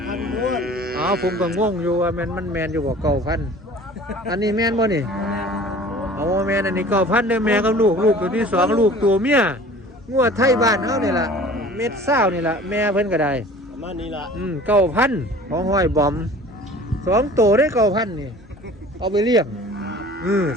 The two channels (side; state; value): both; normal; correlation 0.45